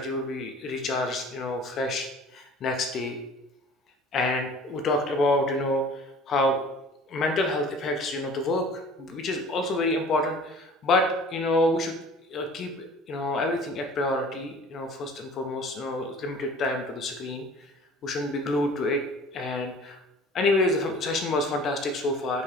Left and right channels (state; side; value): normal; both; correlation 0.46